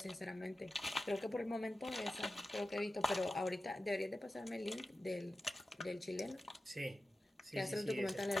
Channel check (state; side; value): normal; both; correlation 0.93